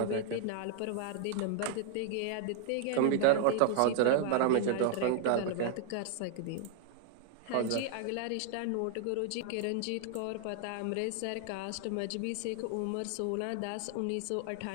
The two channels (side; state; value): both; different; correlation 0.00